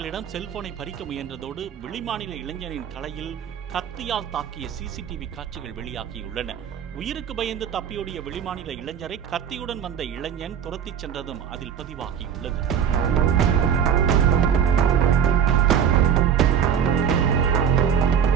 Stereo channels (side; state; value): left; quieter; 8.1 dB